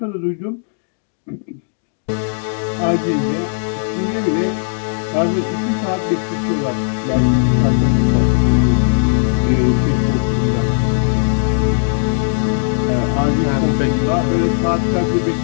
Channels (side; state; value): right; silent; digital silence